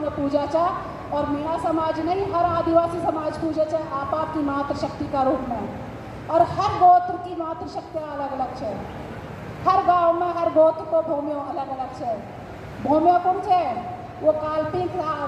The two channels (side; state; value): both; identical; correlation 1.00